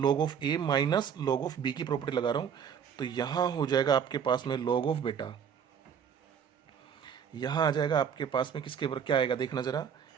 of a minus log of b की प्रॉपर्टी लगा रहा हूँ, तो यहाँ हो जाएगा आपके पास में log ऑफ बेटा, यहाँ आ जाएगा आपके पास में किसके ऊपर क्या आएगा देखना जरा,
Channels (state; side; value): quieter; left; 7.7 dB